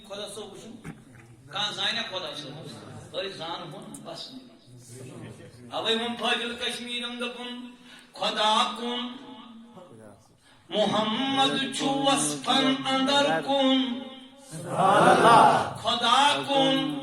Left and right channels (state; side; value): identical; both; correlation 1.00